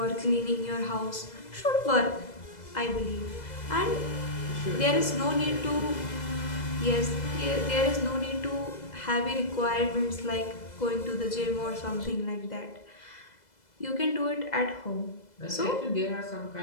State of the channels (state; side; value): late; right; 2.0 ms